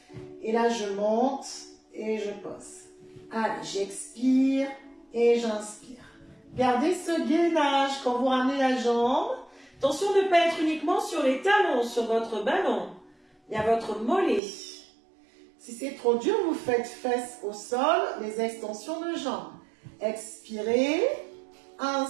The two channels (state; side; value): drops out; left; at 14.4 s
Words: Et là, je monte et je pose. Allez, j'expire et j'inspire. Gardez ce gainage quand vous ramenez la jambe. Attention de ne pas être uniquement sur les talons, sur votre ballon. Il y a votre mollet. Si c'est trop dur, vous faites fesses au sol, les extensions de jambes. Expirez,